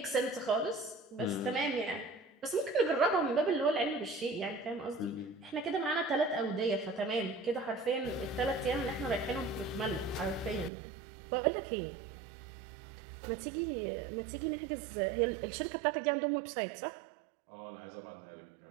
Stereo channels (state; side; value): drops out; left; at 10.7 s